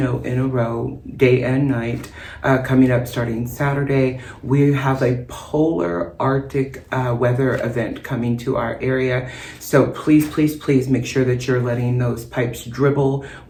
in a row, day and night, coming up starting Saturday. We have a polar Arctic weather event coming to our area. So please, please, please make sure that you're letting those pipes dribble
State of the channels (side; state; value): both; identical; correlation 1.00